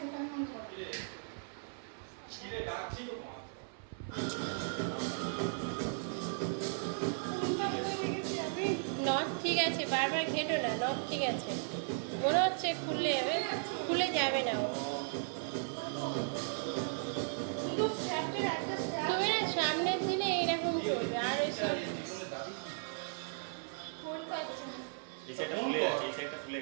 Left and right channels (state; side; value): silent; left; 54 dB below the other